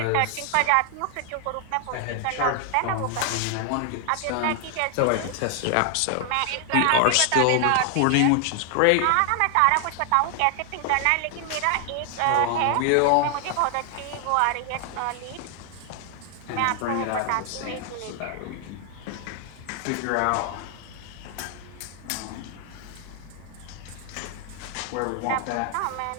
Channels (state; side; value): different; both; correlation 0.00